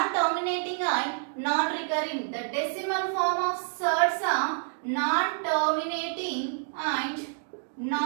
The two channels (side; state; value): left; silent; 59 dB below the other